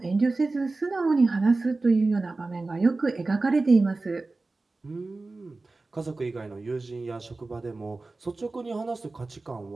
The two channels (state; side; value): quieter; left; 3.4 dB